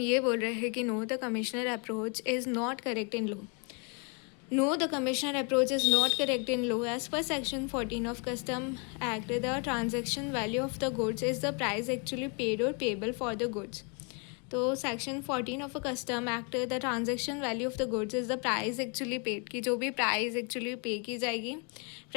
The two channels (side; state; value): right; quieter; 35.1 dB